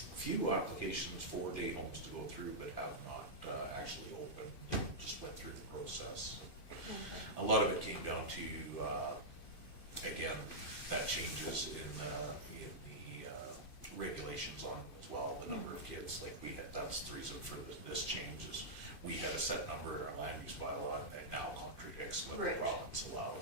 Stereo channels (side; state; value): right; late; 2.4 ms